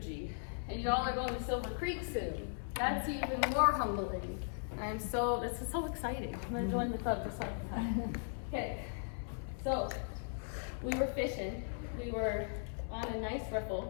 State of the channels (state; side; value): silent; right; 52 dB below the other